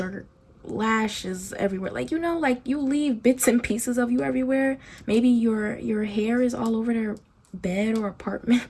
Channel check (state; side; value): identical; both; correlation 1.00